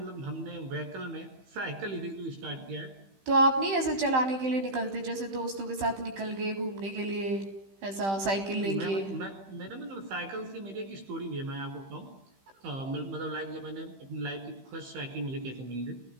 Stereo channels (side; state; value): left; late; 15 ms